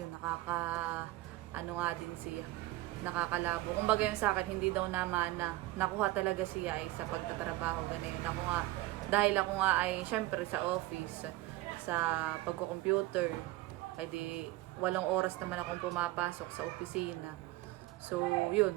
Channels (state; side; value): quieter; left; 17.9 dB